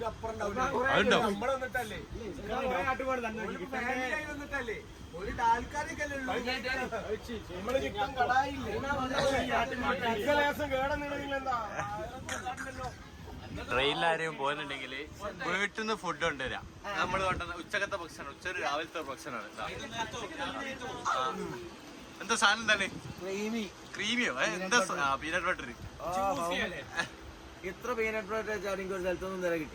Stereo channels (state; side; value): identical; both; correlation 1.00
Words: ട്രെയിനിലാരെയും പോകുന്നുണ്ടെങ്കിൽ വീട്ടിൽ നിന്ന് ഫുഡ് കൊണ്ടുവരാം. നമ്മൾ കൊണ്ടുവന്ന ഉച്ചക്കത്തെ ഭക്ഷണം, രാവിലത്തെ ഭക്ഷണമാണ്. എന്താ സാധനം എന്താണ്? ക്രീമിയോ? എന്താ പീനട്ട് ബട്ടർ? ഇത്ര പീനട്ട് ബട്ടർ വെച്ചാൽ എനിക്ക് ഒരു സ്ഥലത്തൊന്നും നേരെ